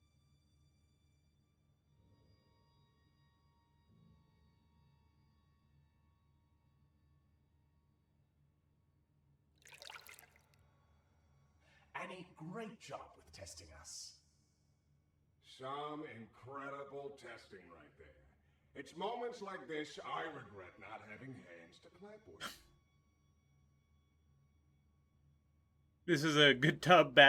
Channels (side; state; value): both; identical; correlation 1.00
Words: Annie, great job with testing us. Some incredible testing right there. It's moments like this I regret not having hands to clap with. This is a good tub,